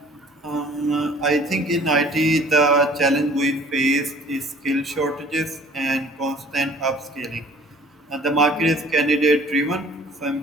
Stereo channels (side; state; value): both; normal; correlation 0.52